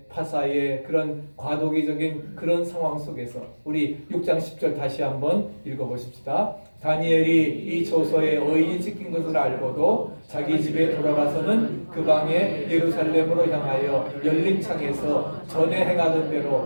파사의 그런 과도기적인 그런 상황 속에서 우리 6장 10절 다시 한번 읽어보십시다. 다니엘이 이 조서에 의인이 찍힌 것을 알고도 자기 집에 돌아가서는 그 방에 예루살렘으로 향하여 열린 창에서 전에 행하던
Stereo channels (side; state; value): both; inverted; correlation -1.00